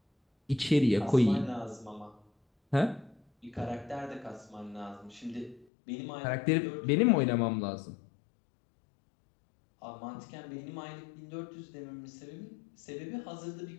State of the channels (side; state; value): right; drops out; at 5.7 s